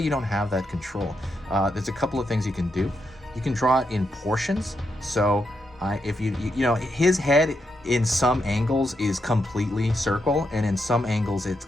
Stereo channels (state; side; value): normal; both; correlation 0.82